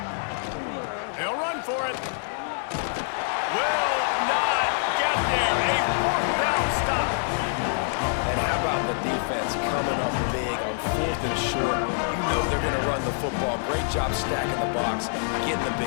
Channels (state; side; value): silent; right; digital silence